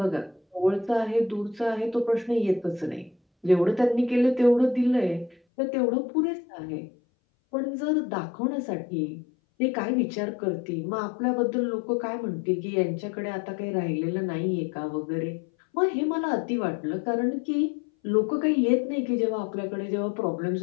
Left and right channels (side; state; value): right; drops out; at 5.4 s